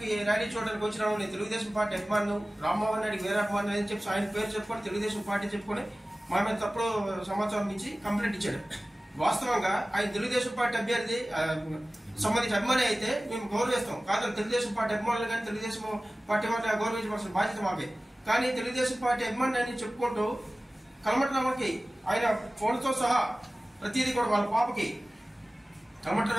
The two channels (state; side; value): normal; both; correlation 0.97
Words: ర్యాలీ చూడడానికి వచ్చినాము, నేను తెలుగుదేశం పార్టీ అభిమాను రామ్మోహన్ రెడ్డికి వేరే అభిమానులు అని చెప్పి ఆయన పేరు చెప్పుకొని తెలుగుదేశం పార్టీ చెప్పుకొని మా మీద తప్పుడు సమాచారం ఇచ్చి కంప్లైంట్ ఇచ్చాడు. వాస్తవంగా ఆయన తెలుగుదేశం పార్టీ అభ్యర్థి సంబంధించి అభిమాని అయితే మేము గౌరవిస్తాం. కాదు తెలుగుదేశం పార్టీ అభిమానులు కానీ తెలుగుదేశం పార్టీ వాళ్ళు గౌరవించవలసిన బాధ్యత మాకే. కానీ తెలుగుదేశం పార్టీ అభిమాని అని చెప్పుకుంటూ కలమట రమణకి ఆయన ఫోన్తో సహా ప్రతిదీ కూడా వాళ్ళ పాపకి కలమట